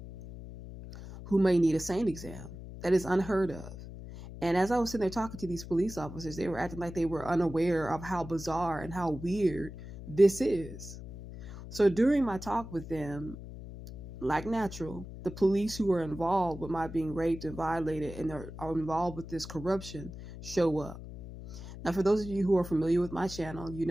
who may need a SANE exam. That is unheard of. And as I was sitting there talking to these police officers, they were acting like they were unaware of how bizarre and how weird this is. So during my talk with them, like natural, the police who are involved with my being raped and violated and are involved with this corruption show up. Now, for those of you who are familiar with my channel, you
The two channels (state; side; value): noise; left; hum, 12 dB below the sound